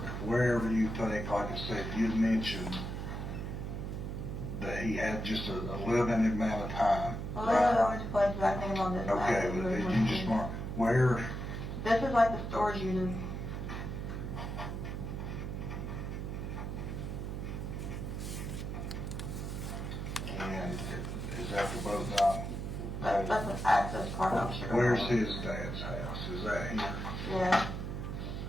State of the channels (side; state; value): right; noise; hum, 4 dB below the sound